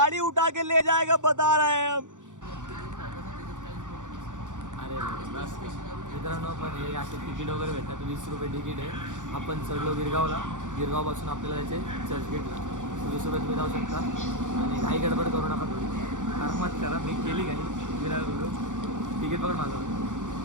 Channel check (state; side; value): late; left; 0.86 ms